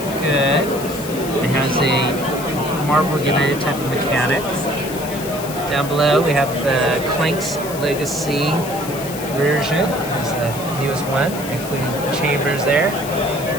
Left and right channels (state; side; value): noise; left; hiss, 12 dB below the sound